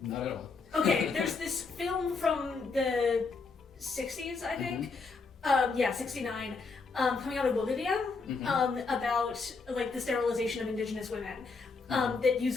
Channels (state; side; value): quieter; right; 4.4 dB